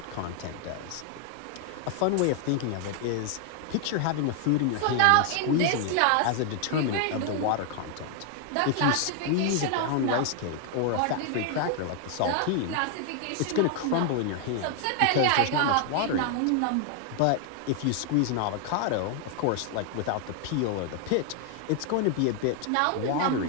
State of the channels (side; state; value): both; different; correlation 0.00